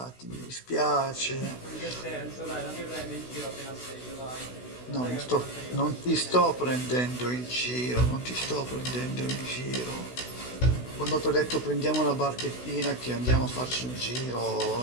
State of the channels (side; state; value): right; late; 16 ms